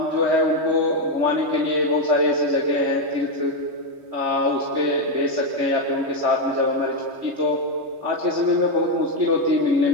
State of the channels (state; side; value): late; left; 3.2 ms